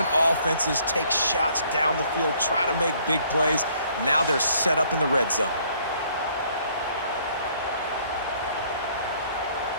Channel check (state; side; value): inverted; both; correlation -0.62